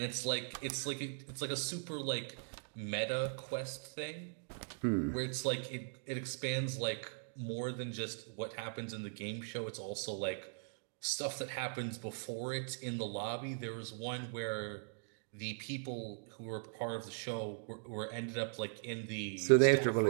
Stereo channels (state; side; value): silent; left; digital silence